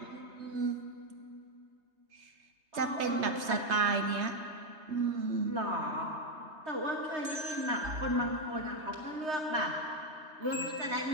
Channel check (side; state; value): left; late; 3.3 ms